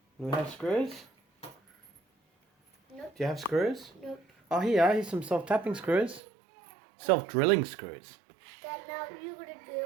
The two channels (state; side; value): drops out; left; at 6.2 s